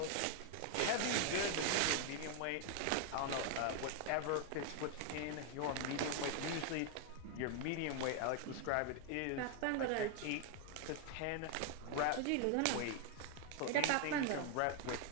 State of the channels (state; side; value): different; both; correlation 0.00